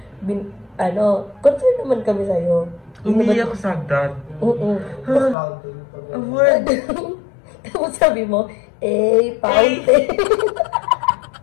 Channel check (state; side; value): drops out; right; at 5.4 s